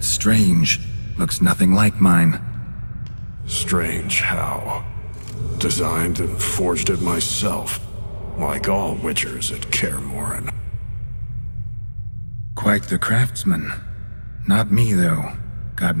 strange. Looks nothing like mine. Strange how. Designed and forged it myself, like all witchers at Kaer Morhen. Quite the craftsman. Not me, though. Got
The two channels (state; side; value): inverted; both; correlation -1.00